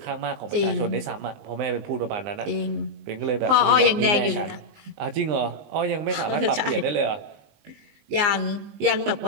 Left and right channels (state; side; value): late; left; 19 ms